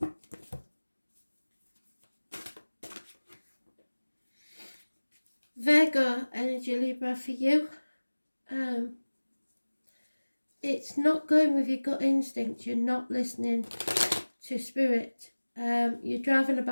Virgo energy, Libra, for you. It's not going with your gut instinct. You're not listening to spirit. You're driving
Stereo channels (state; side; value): inverted; both; correlation -1.00